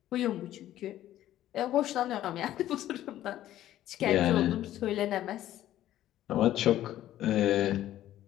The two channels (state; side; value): quieter; right; 13.1 dB